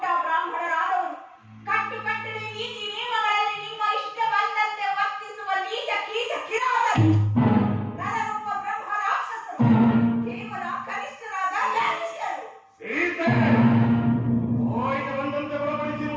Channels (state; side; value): identical; both; correlation 1.00